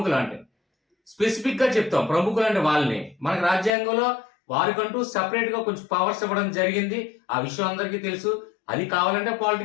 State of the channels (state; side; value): drops out; right; at 3.7 s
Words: అంటే స్పెసిఫిక్ గా చెప్తాం ప్రముఖులు అంటే వాళ్ళని. మనకి రాజ్యాంగంలో వారికంటూ సెపరేట్ గా కొంచెం పవర్స్ ఇవ్వడం జరిగింది. ఆ విషయం అందరికీ తెలుసు. అది కావాలంటే